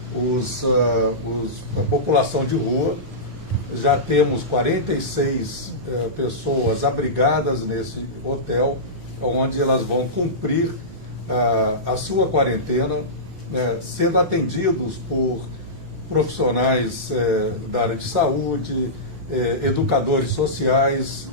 a população de rua. Já temos 46 pessoas abrigadas nesse hotel, onde elas vão cumprir a sua quarentena, sendo atendidos por profissionais da área de saúde, educadores sociais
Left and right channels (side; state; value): both; normal; correlation -0.17